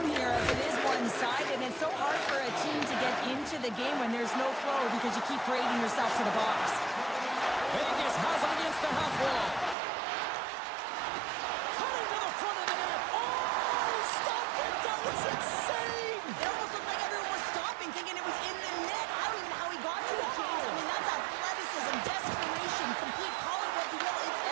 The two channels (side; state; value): left; drops out; at 9.8 s